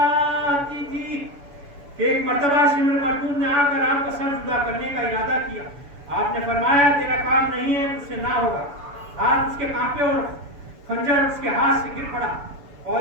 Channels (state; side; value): late; left; 7.0 ms